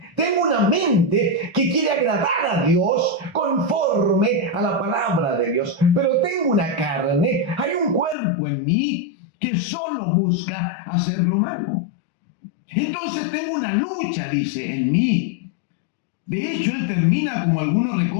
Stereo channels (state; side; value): drops out; right; at 8.2 s